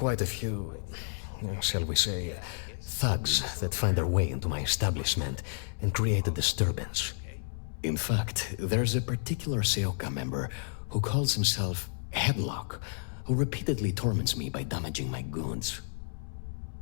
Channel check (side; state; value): right; silent; 57 dB below the other